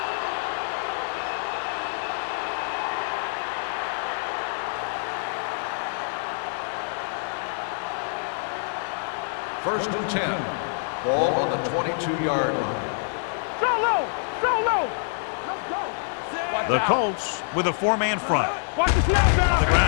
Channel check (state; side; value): silent; right; digital silence